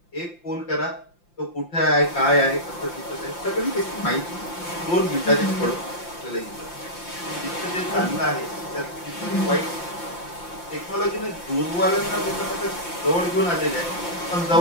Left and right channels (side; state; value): right; late; 5.8 ms